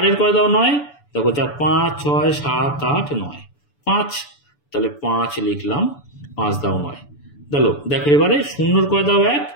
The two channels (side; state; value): right; late; 6.9 ms